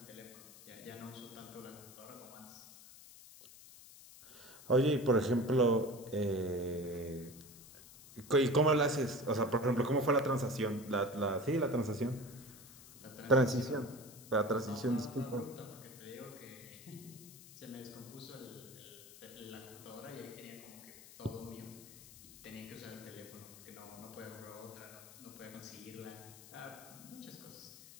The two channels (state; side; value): noise; left; hiss, 18 dB below the sound